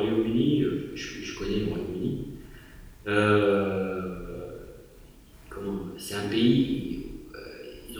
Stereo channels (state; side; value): identical; both; correlation 1.00